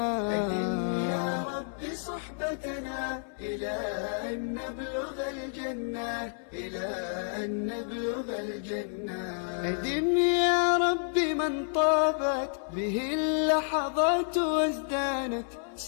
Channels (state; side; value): silent; right; 58 dB below the other